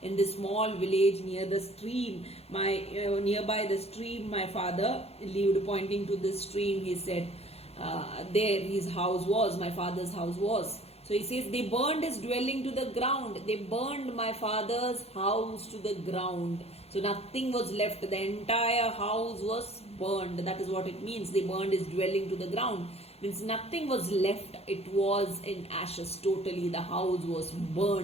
in this small village near the stream. Nearby the stream, my father lived. Pointing to the stream, he said, there his house was. My father's house was. So he says, they burned his dwelling to the ground. They burned my father's house to the ground. So nothing was left. The entire house was burned. That is what it means. They burned his dwelling to the ground. Means nothing was left. It was in ashes totally. The house was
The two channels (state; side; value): late; right; 0.30 ms